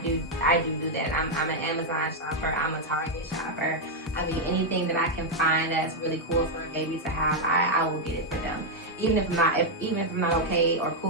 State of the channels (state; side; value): normal; both; correlation 0.00